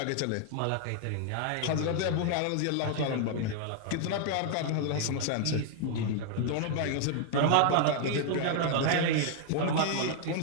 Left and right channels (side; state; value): both; different; correlation 0.00